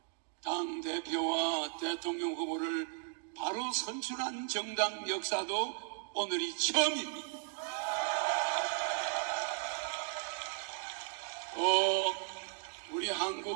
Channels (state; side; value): silent; left; 54 dB below the other